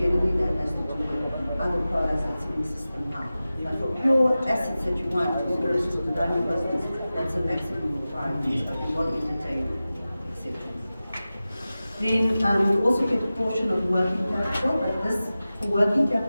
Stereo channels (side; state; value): both; inverted; correlation -0.95